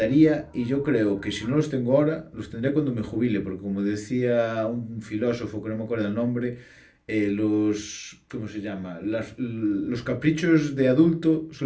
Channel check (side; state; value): both; identical; correlation 1.00